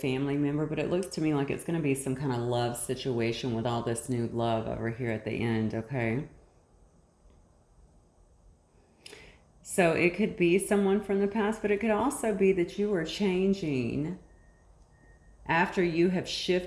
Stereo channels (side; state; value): both; identical; correlation 1.00